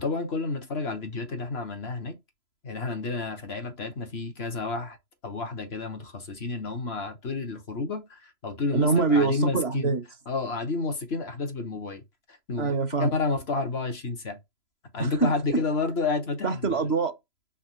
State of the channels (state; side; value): late; right; 3.0 ms